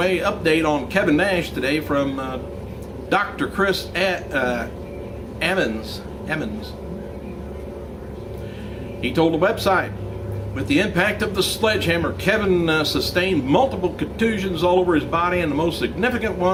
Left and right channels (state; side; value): identical; both; correlation 1.00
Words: update on Kevin Nash today from Dr. Chris Emmons. He told the website, with the impact of the sledgehammer, Kevin sustained multiple contusions all over his body, and the most significant